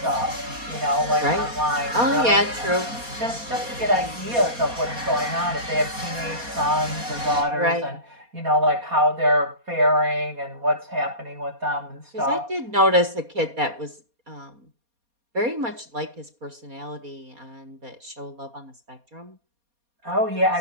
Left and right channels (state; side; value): late; left; 4.2 ms